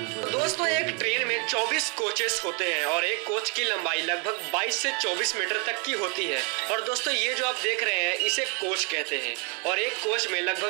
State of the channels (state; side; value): quieter; left; 32.9 dB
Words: दोस्तों एक ट्रेन में 24 कोचेस होते हैं और एक कोच की लंबाई लगभग 22 से 24 मीटर तक की होती है। और दोस्तों ये जो आप देख रहे हैं इसे कोच कहते हैं और एक कोच में